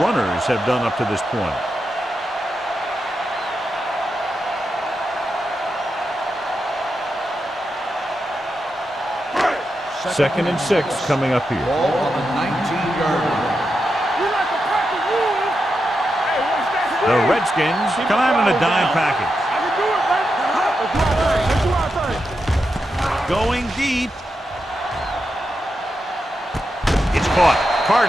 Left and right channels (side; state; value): both; normal; correlation 0.87